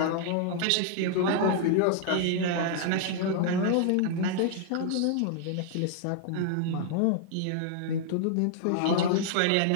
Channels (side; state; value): both; different; correlation -0.01